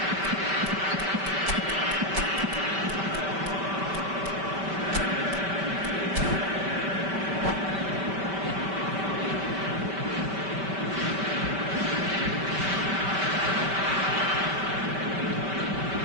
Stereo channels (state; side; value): late; left; 5.2 ms